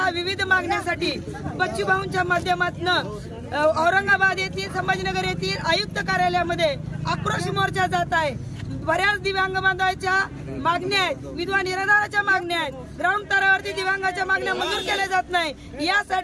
विविध मागण्यासाठी बच्चूभाऊंच्या माध्यमातून औरंगाबाद येथील संभाजीनगर येथील आयुक्त कार्यालयामध्ये आक्रोश मोर्चा जात आहे। बऱ्याच दिव्यांग बांधवांच्या मागण्या आहेत, विधवा निराधाराच्या मागण्या आहेत, ग्राउंड स्तरावरती दिव्यांगाच्या मागण्या मंजूर केल्या जात नाही।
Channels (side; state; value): both; identical; correlation 1.00